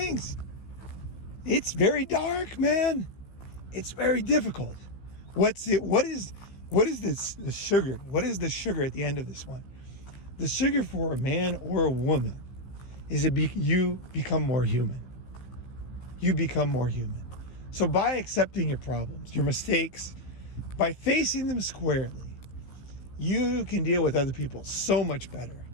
It's very dark, man. It's very difficult. What is the sugar? What is the sugar at the end of this one? The sugar for a man or a woman is you become more human. You become more human. So by accepting your problems, your mistakes, by facing them squarely, you can deal with other people so much better.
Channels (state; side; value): late; right; 15 ms